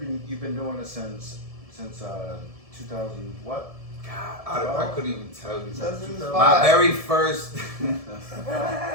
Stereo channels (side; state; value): left; late; 1.7 ms